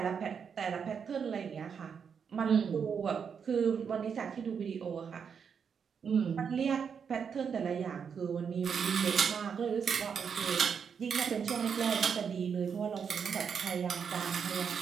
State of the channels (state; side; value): quieter; left; 6.8 dB